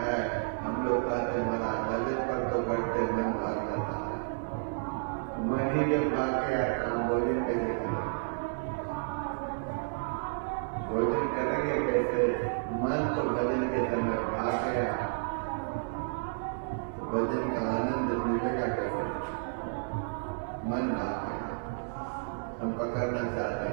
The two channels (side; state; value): left; silent; digital silence